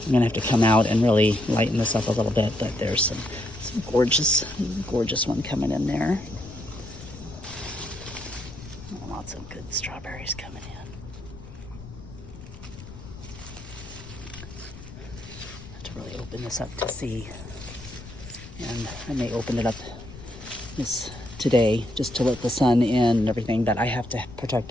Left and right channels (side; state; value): left; noise; rumble, 15 dB below the sound